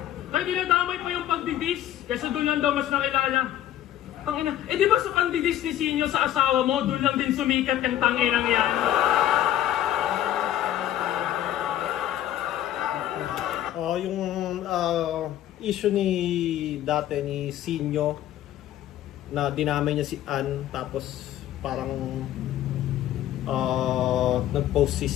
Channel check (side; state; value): right; quieter; 12.3 dB